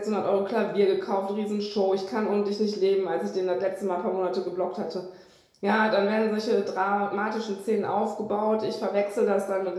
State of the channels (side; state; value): both; identical; correlation 1.00